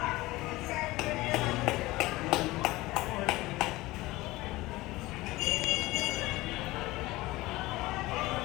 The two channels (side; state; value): right; quieter; 19.4 dB